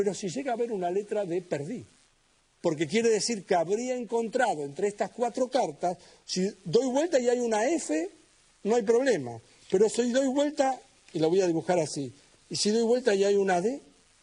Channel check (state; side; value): identical; both; correlation 1.00